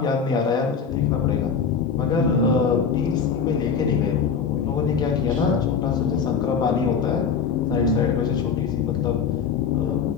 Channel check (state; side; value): quieter; right; 6.4 dB